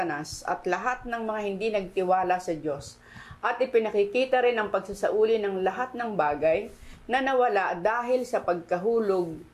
at lahat ng mga hindi nagtiwala sa Diyos, at ipinakikita rin ang pagsasauli ng lahat ng bagay na nawala dahil sa pagkahulog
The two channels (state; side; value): identical; both; correlation 1.00